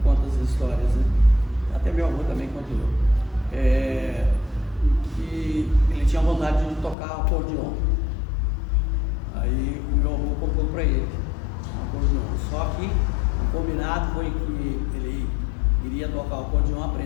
conta as histórias, né? Até meu avô também contou. E ele tinha vontade de tocar acordeon. Aí o meu avô comprou para ele um acordeon. Só que o combinado foi que ele iria tocar o acordeon,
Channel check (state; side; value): drops out; right; at 7.0 s